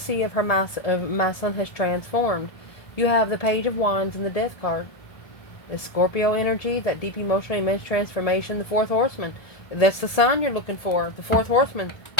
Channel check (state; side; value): late; right; 1.7 ms